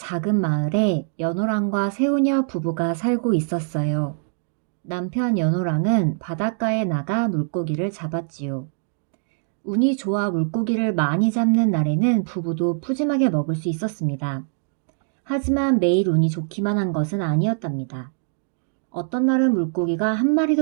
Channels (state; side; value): silent; left; 63 dB below the other